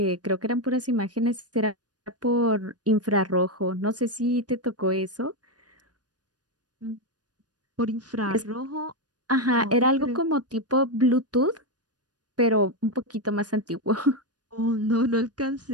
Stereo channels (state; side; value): late; left; 0.69 ms